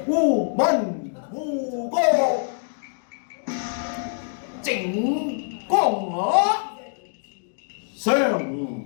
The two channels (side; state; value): right; silent; digital silence